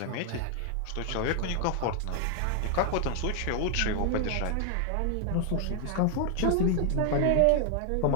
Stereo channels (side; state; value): both; different; correlation 0.00